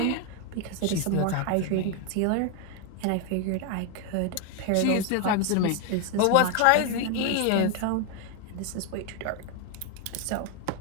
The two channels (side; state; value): both; different; correlation 0.01